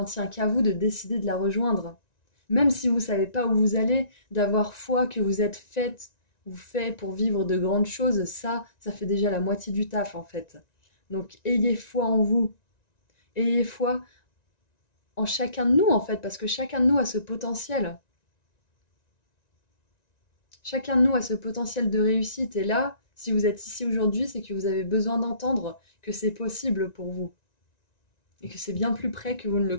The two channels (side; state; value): right; late; 1.9 ms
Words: tient qu'à vous de décider de la rejoindre. Même si vous ne savez pas où vous allez, d'avoir foi que vous êtes faite ou fait pour vivre de grandes choses, ça fait déjà la moitié du taf en fait. Donc ayez foi en vous, ayez foi en chacun de nous en fait, parce que chacun de nous a ce potentiel. Chacun de nous a ce potentiel de réussite et là, si vous êtes ici aujourd'hui, c'est que vous avez besoin d'entendre que c'est possible pour vous et que c'est bien plus près que vous ne le